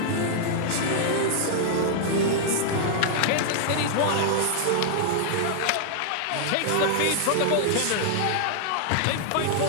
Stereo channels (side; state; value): both; different; correlation -0.01